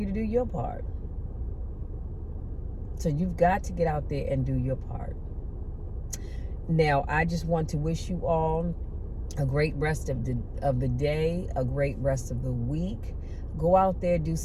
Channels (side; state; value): both; identical; correlation 1.00